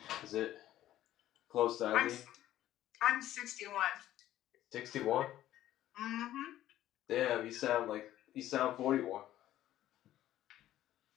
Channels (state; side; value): quieter; right; 13.4 dB